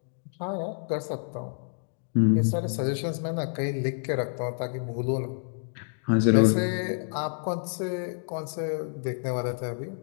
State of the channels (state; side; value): silent; right; digital silence